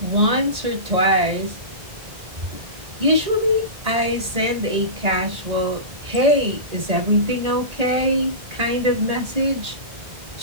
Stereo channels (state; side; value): late; left; 1.8 ms